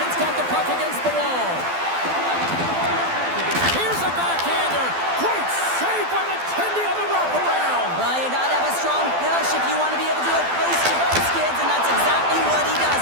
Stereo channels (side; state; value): left; late; 12 ms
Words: got the puck against the wall. Here's a backhander. Great save by McKenzie on the wraparound. Well, you gotta have a strong push if you want to be able to do it close to those skids, and that's exactly what he does